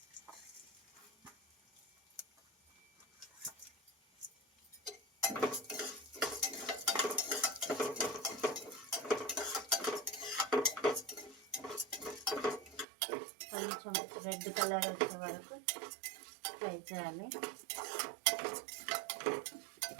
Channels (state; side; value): drops out; left; at 12.9 s